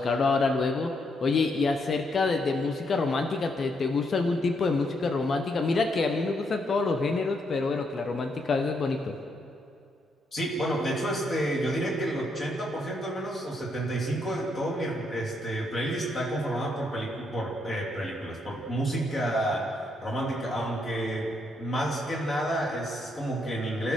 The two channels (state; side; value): normal; both; correlation 0.76